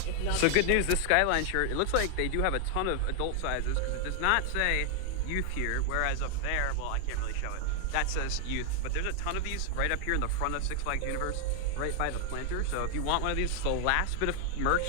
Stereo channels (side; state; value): both; different; correlation 0.00